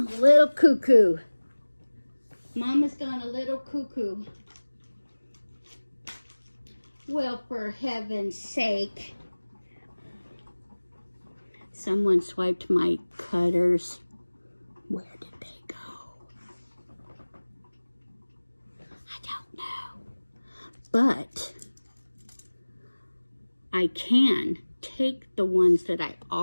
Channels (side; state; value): both; inverted; correlation -1.00